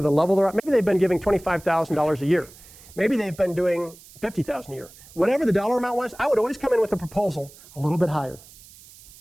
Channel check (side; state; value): right; noise; hiss, 22 dB below the sound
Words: the level they're at. Maybe they've been giving $25,000 a year. Maybe they've been doing $50,000 a year. Whatever the dollar amount was, I would always come in with a proposal a little bit higher.